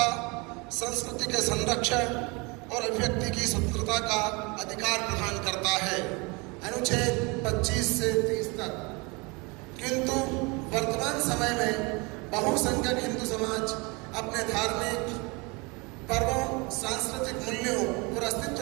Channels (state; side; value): quieter; left; 28.1 dB